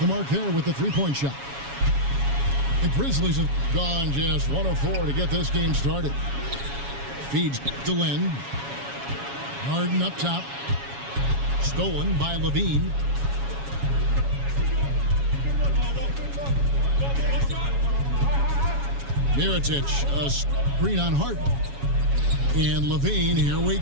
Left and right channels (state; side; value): late; left; 7.2 ms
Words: mark there with the three-point shot. The Grizzlies have gone just 1 of 4 to get this game started. Feeds to Lynn. Harden up top. Stolen by LaVine. Mirotic, a screen on Harden. And LaVine, here we